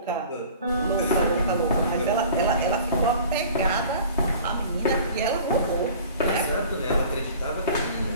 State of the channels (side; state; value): both; inverted; correlation -0.45